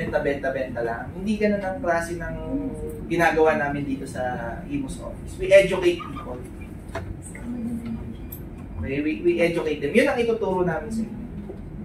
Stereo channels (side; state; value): both; identical; correlation 1.00